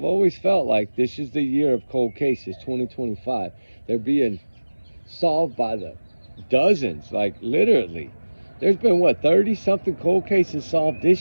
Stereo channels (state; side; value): inverted; both; correlation -1.00